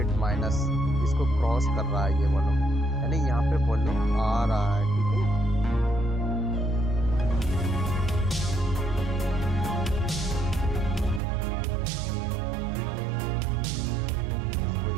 माइनस इसको क्रॉस कर रहा है ये वॉल्यूम, यानी यहाँ पे वॉल्यूम आ रहा है। ठीक है,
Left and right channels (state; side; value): drops out; left; at 11.2 s